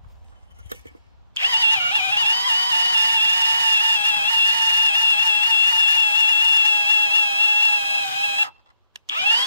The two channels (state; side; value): inverted; both; correlation -0.79